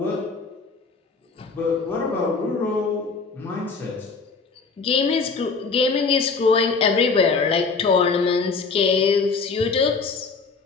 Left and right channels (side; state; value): right; quieter; 4.6 dB